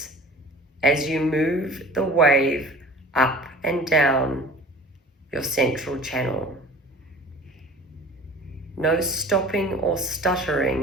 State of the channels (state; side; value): normal; both; correlation 0.42